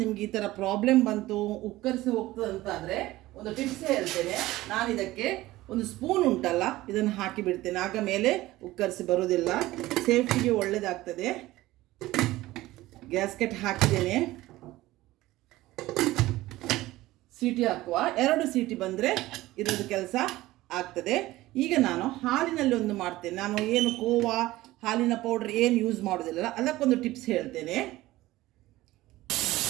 ನಿಮ್ಗೆ ಈ ಥರ ಪ್ರಾಬ್ಲಮ್ ಬಂತು, ಉಕ್ಕರಿಸಿ ಹೋಗ್ತದೆ ಅಂತಾದರೆ ಒಂದು ಟಿಪ್ಸ್ ಹೇಳ್ತೇನೆ ನಾನು. ಇದಕ್ಕೆ ಒಂದು ಸ್ಪೂನ್ ಉಂಟಲ್ಲ, ಇದನ್ನು ಹಾಕಿ ಬಿಡ್ತೇನೆ. ಆಗ ಮೇಲೆ ಉಕ್ಕರಿಸಿ ಬರೋದಿಲ್ಲ, ಸೇಫ್ಟಿಗೆ ಒಳ್ಳೆಯದಾಗ್ತದೆ. ಗ್ಯಾಸ್ಕೆಟ್ ಹಾಕಿದ್ದೇನೆ. ಸೀಟಿ ಹಾಕುವ, 2 ಸೀಟಿ ಬಂದರೆ ಇರೋದು ಕೆಲಸ ಆಗ್ತದೆ. ಈಗ ನಾನು ಹಾಲಿನಲ್ಲಿ ಒಂದು ಮಾಡ್ತೇನೆ. ನಾನು ಏನು ಕೋವಾ ಹಾಲಿನ ಪೌಡ್ರ್ ಏನು ಯೂಸ್ ಮಾಡೋದಿಲ್ಲ, ಅದಕ್ಕೊಂದು ಟಿಪ್ಸ್ ಹೇಳ್ತೇನೆ.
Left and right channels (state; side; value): quieter; left; 17.4 dB